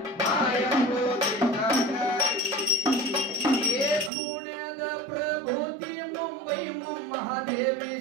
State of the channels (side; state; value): left; drops out; at 4.1 s